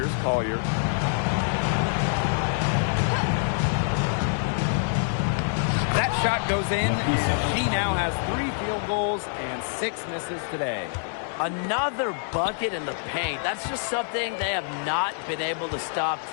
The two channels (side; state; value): right; silent; digital silence